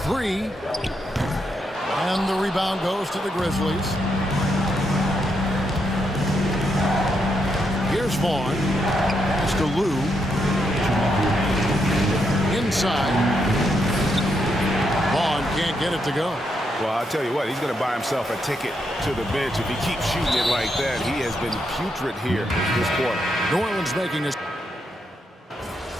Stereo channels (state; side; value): normal; both; correlation 0.80